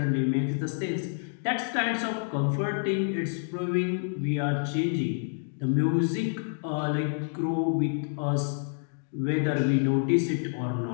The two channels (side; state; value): right; silent; digital silence